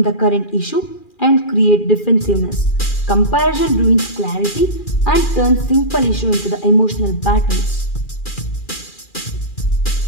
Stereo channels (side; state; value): right; late; 2.4 ms